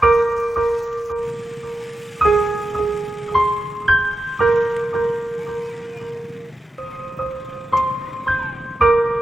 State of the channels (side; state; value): both; normal; correlation 0.91